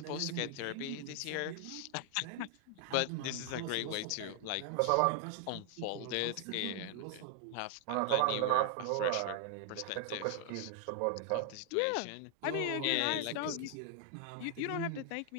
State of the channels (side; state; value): both; different; correlation 0.00